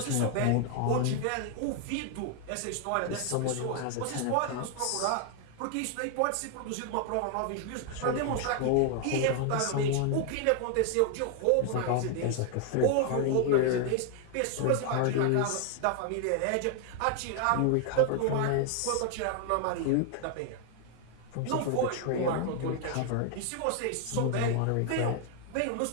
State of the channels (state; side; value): different; both; correlation 0.00